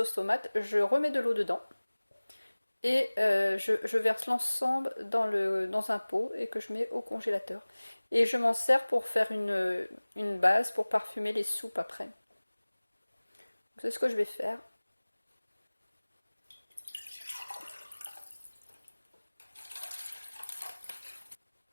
tomate, je remets de l'eau dedans. Et je verse l'ensemble dans un pot et que je mets au congélateur. Et je m'en sers pour faire une base pour parfumer les soupes après. C'est ce que je vais faire.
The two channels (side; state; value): both; inverted; correlation -1.00